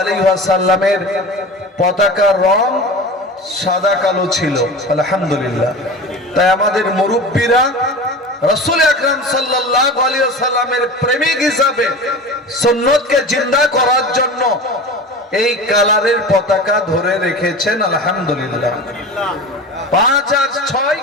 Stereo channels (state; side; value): normal; both; correlation 0.33